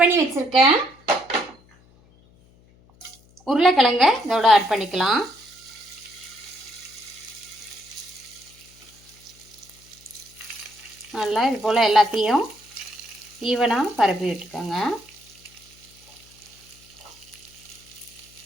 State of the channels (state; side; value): noise; left; hum, 28 dB below the sound